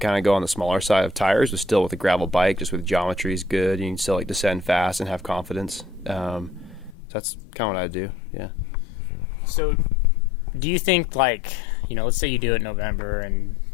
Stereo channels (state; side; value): drops out; right; at 7.0 s